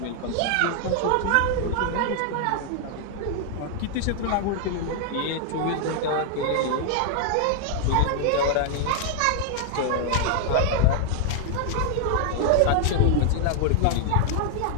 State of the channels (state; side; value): different; both; correlation 0.00